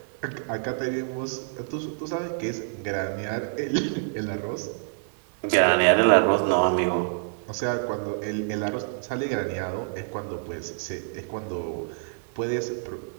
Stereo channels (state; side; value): silent; left; 60 dB below the other